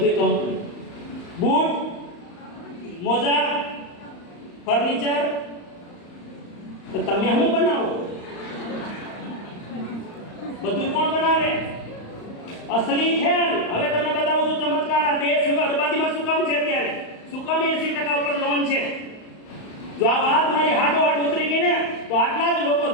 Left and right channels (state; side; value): late; right; 35 ms